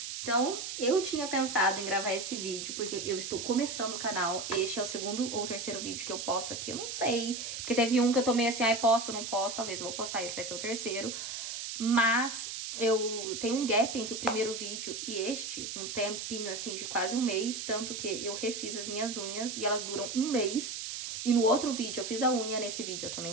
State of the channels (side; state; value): right; noise; hiss, 6 dB below the sound